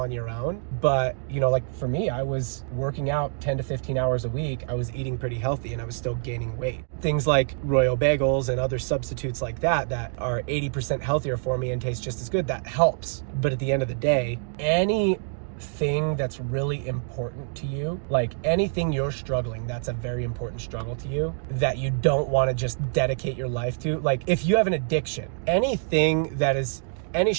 your own. But, like for me, I was working out 10 to 15 hours a week. I was eating pretty healthy and I was still gaining weight. Things like Royal bagels and other substitutes like that are 80% healthier for me and taste just as good, that helps. But at the end of the day, anything that's really important to you, like anything you're struggling, that's a very important struggle to you that you don't want to just dedicate your life to. Like if you have an addiction, anything that is any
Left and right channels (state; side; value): silent; left; digital silence